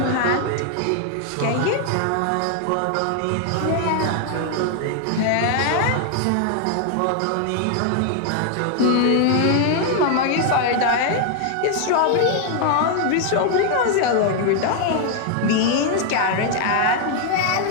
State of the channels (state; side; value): different; both; correlation 0.00